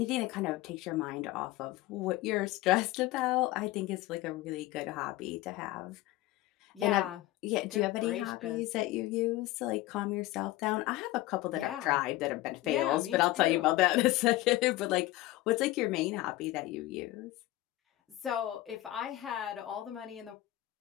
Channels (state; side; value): quieter; right; 17.1 dB